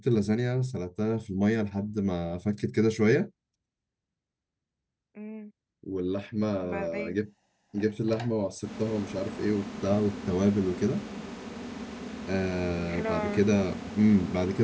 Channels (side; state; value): both; identical; correlation 1.00